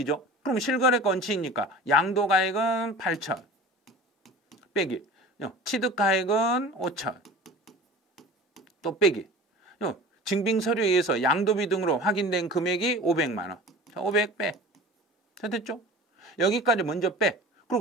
그럼 실거래가 원칙이니까 양도가액은 8,000 빼기 취득가액은 5,000 또 빼기 증빙서류에 의해서 양도비 등으로 확인된 금액이 500만 원. 자, 500 빼. 자, 됐죠? 여기까지 먼저 빼.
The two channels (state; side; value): normal; both; correlation 0.38